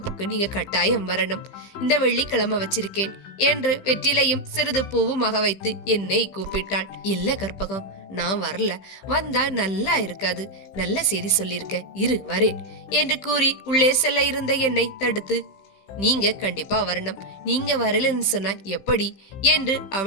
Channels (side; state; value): right; late; 15 ms